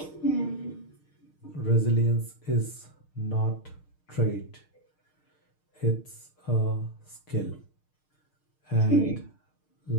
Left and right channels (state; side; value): late; right; 6.5 ms